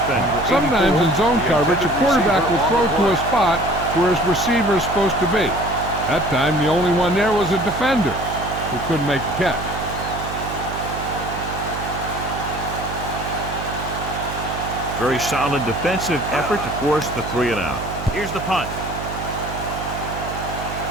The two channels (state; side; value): noise; right; hum, 8 dB below the sound